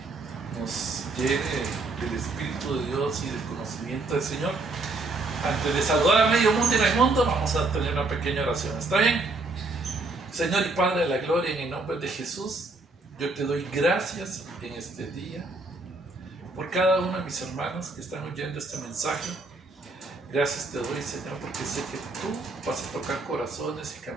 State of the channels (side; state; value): left; quieter; 3.3 dB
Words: nos llene del Espíritu de Dios y del conocimiento del Señor. Antes de saludar a medio mundo y Raimundo, vamos a tener una pequeña oración. ¿Está bien? Señor y Padre de la Gloria, en el nombre de Jesús, yo te doy gracias en este día por cada uno de mis hermanos que están oyendo este mensaje. Gracias te doy, Señor, porque sé que tú vas a tocar corazones y